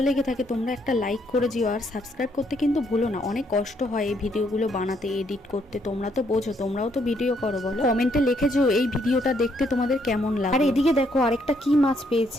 লেগে থাকে তোমরা একটা লাইক করে দিও আর সাবস্ক্রাইব করতে কিন্তু ভুলো না। অনেক কষ্ট হয় এই ভিডিওগুলো বানাতে, এডিট করতে। তোমরা তো বোঝো, তোমরাও তো ভিডিও করো, বলো কমেন্টে লিখেছো এই ভিডিওটা দেখতে তোমাদের কেমন লাগে। আর এদিকে দেখো আরেকটা কি মাছ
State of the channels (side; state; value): both; normal; correlation 0.72